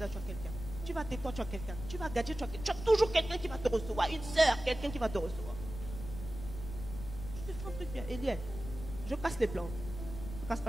tu as quelqu'un. Tu vas à Tétouan, tu as quelqu'un. Tu vas à Gadji, tu as quelqu'un. Tu as toujours quelqu'un qui va te recevoir. Une sœur, quelqu'un qui va te recevoir. Je te fais un truc bien. Eliel, je casse les plans. Je ne casse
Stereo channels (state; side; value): noise; left; rumble, 10 dB below the sound